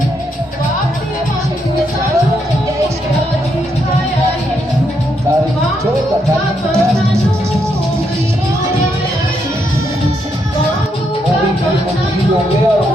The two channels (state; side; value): normal; both; correlation 0.78